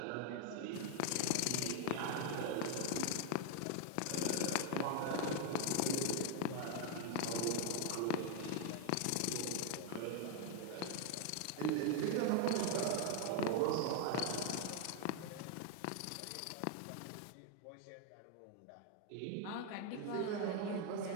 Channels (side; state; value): both; different; correlation 0.00